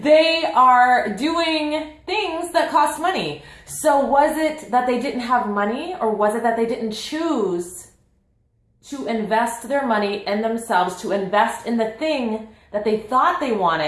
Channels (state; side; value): identical; both; correlation 1.00